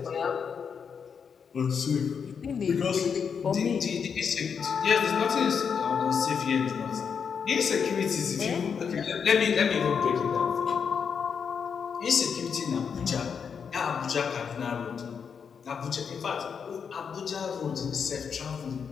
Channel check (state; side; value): quieter; right; 6.6 dB